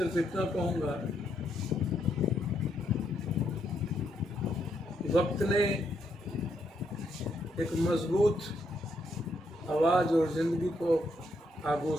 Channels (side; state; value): both; normal; correlation 0.76